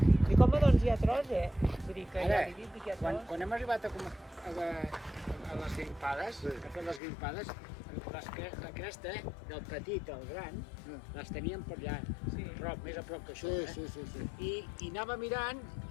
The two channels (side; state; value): right; drops out; at 7.0 s